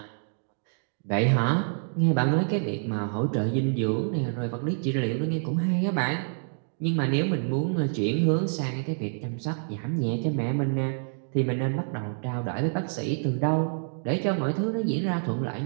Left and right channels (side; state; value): left; silent; 60 dB below the other